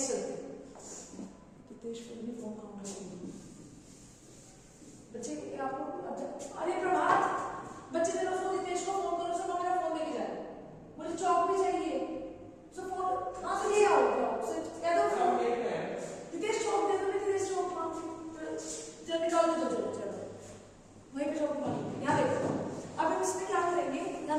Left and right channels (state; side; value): identical; both; correlation 1.00